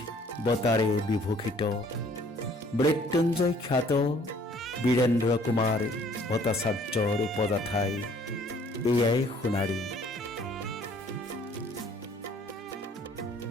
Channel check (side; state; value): both; normal; correlation 0.58